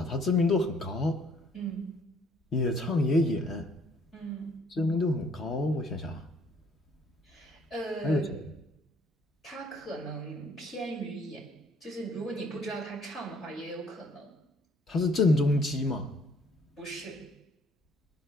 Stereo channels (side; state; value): both; normal; correlation 0.62